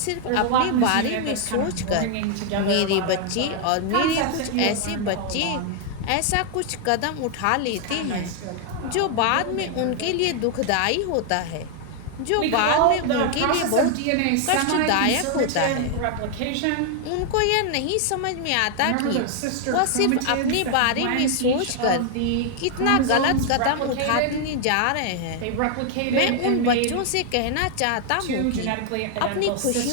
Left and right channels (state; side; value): different; both; correlation 0.00